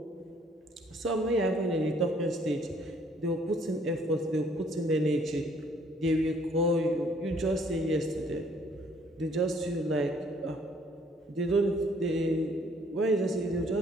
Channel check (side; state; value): both; normal; correlation 0.62